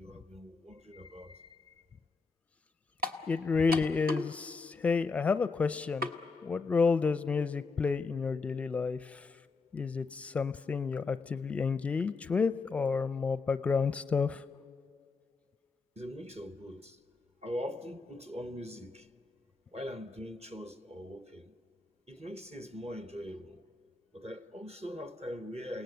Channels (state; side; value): quieter; right; 4.3 dB